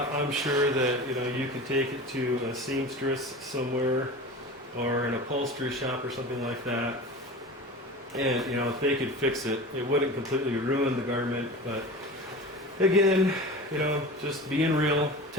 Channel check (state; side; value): normal; both; correlation 0.33